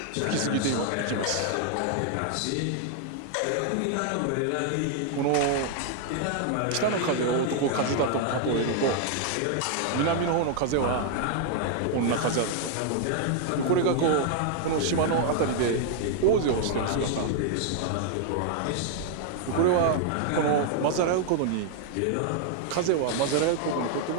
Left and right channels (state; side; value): different; both; correlation 0.00